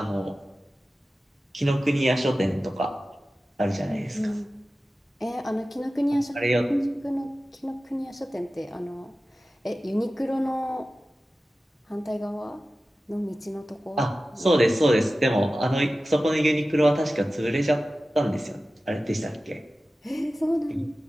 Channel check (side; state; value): both; normal; correlation 0.95